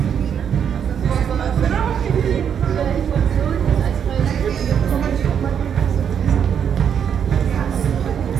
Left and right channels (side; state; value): left; quieter; 8.1 dB